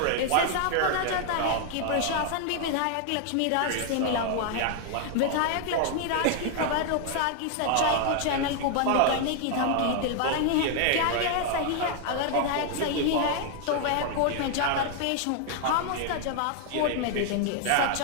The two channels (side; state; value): both; different; correlation 0.00